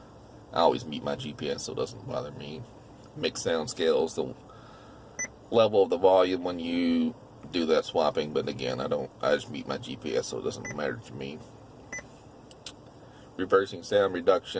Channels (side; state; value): both; identical; correlation 1.00